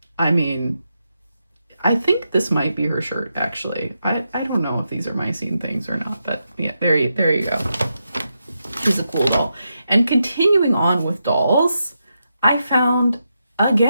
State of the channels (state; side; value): inverted; both; correlation -0.85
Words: I mean, I think this might be her shirt, actually. I don't know if these are My Scene things or not, but yeah, there you go. She's a cool doll. And continuing on with dolls, I found,